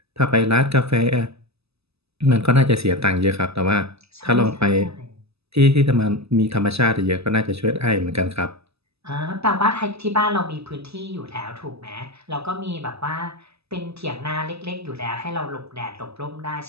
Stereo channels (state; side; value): late; left; 0.79 ms